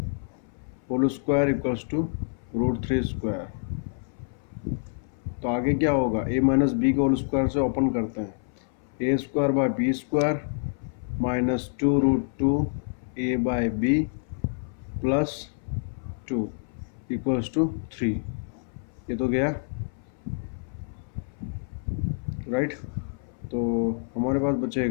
whole square equals to √3 square. तो आगे क्या होगा, a माइनस बी को होल स्क्वायर से ओपन करते हैं, a square by b square minus 2√2 a by b plus 2 equals to 3। ये तो गया, राइट। तो हमारे पास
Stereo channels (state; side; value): silent; right; 59 dB below the other